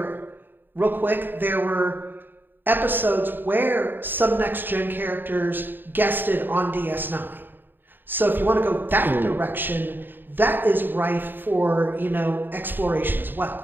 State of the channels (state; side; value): late; left; 0.094 ms